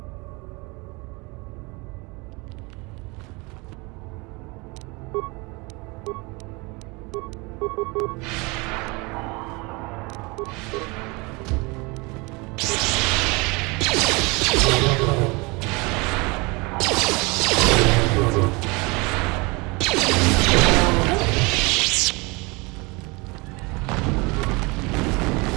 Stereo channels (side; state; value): left; quieter; 26.8 dB